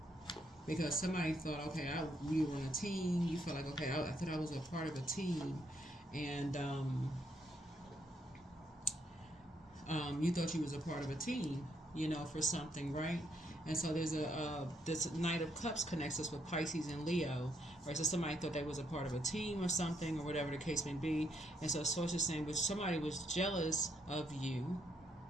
Because somebody thought, okay, we were on a team. You felt like, okay, I thought I was a part of a team, and you thought you was a part of a team, for something, right? And so there's this Knight of Cups connects us with Pisces and Leo, right? So somebody thought they was a part of a team or something, or whatever the case may be. And so Source is saying, but somebody was jealous of you.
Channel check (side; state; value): both; normal; correlation 0.74